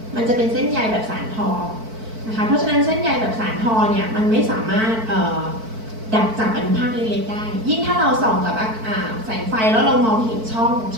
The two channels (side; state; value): left; late; 4.5 ms